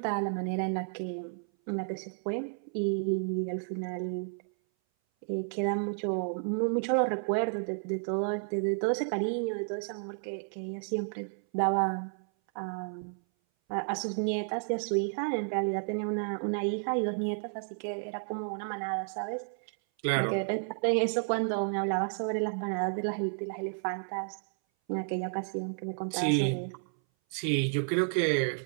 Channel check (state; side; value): silent; left; 57 dB below the other